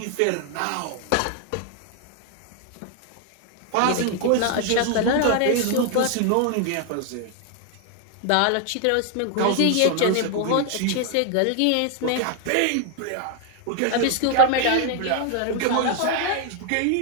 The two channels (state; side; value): different; both; correlation 0.00